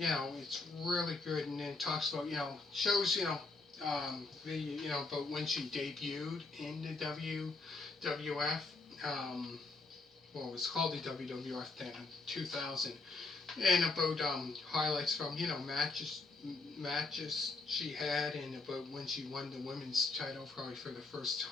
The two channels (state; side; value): quieter; right; 3.5 dB